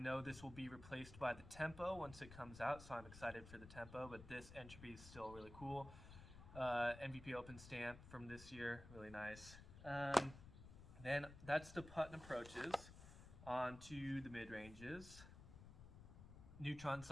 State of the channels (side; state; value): left; noise; rumble, 14 dB below the sound